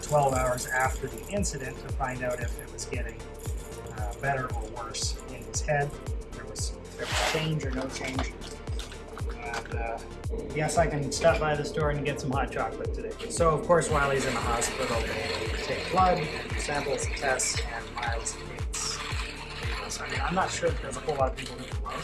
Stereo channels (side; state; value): both; identical; correlation 1.00